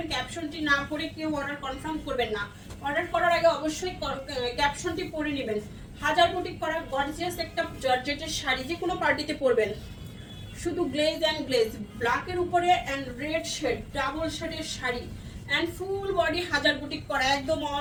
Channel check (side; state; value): both; identical; correlation 1.00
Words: ক্যাপশনটি না পড়ে কেউ অর্ডার কনফার্ম করবেন না। অর্ডার করার আগে অবশ্যই ক্যাপশনটি পড়ে নেবেন। হাজার বুটিক করা গর্জিয়াস একটা জর্জেটের শাড়ি, যে কোনো পার্টিতে পরবেন। শুধু গ্লেজ এন্ড গ্লেজ, ব্ল্যাকের উপরে এন্ড রেড শেড, ডাবল শেডের শাড়ি এন্ড ফুল বডি হাজার বুটিক করা, একদম